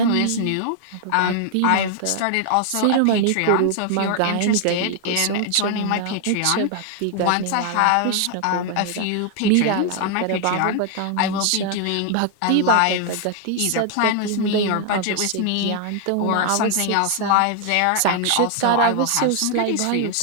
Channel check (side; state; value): both; different; correlation 0.00